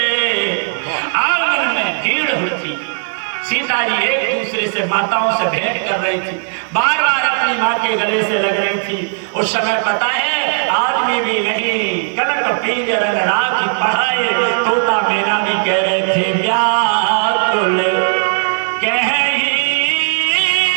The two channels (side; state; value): left; silent; 56 dB below the other